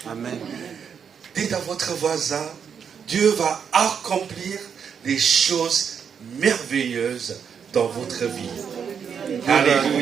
Amen. Dites à votre voisin, Dieu va accomplir des choses merveilleuses dans votre vie.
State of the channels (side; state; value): left; quieter; 7.1 dB